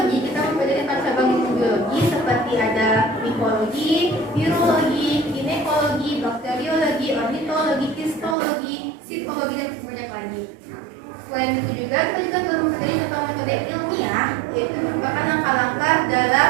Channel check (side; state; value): left; drops out; at 8.3 s